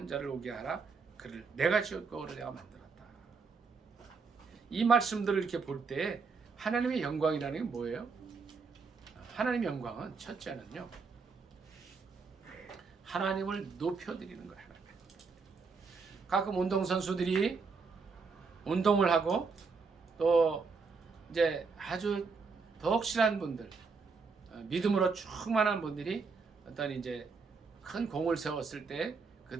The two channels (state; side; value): quieter; left; 4.8 dB